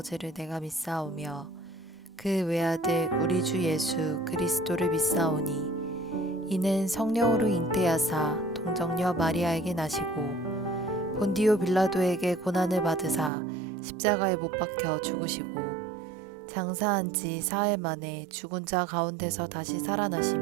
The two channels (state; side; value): drops out; left; at 13.3 s